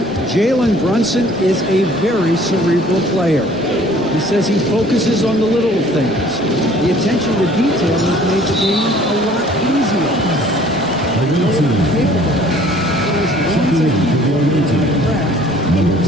Jalen Brunson is a very cerebral player. He says he focuses on the little things. The attention to detail has made the game a lot easier. The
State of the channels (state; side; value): normal; both; correlation 0.54